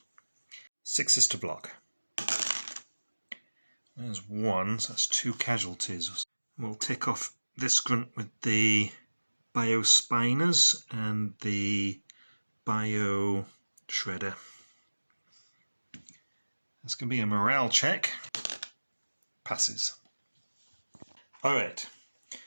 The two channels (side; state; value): both; inverted; correlation -1.00